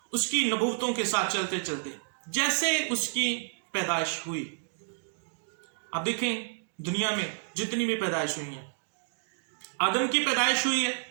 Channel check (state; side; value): silent; left; digital silence